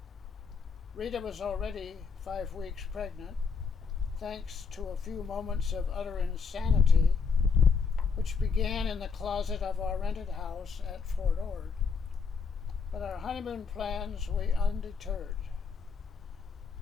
Rita was already 5 weeks pregnant, thanks to a few moments of utter insanity, which began in the closet of our rented house at Fort Ord. But our honeymoon plans we undeterred.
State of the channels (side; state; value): right; quieter; 5.6 dB